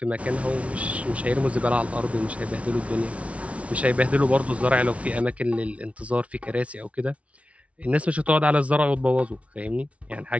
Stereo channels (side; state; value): left; late; 0.064 ms